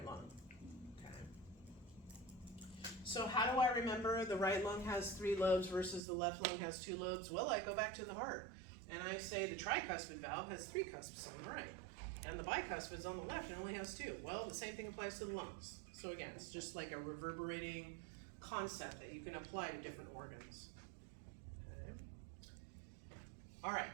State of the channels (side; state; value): left; drops out; at 6.0 s